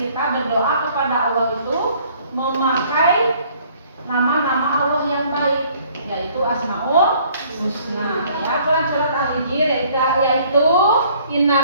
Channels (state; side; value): inverted; both; correlation -0.59